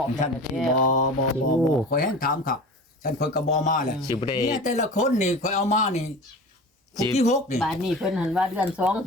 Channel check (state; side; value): normal; both; correlation 0.35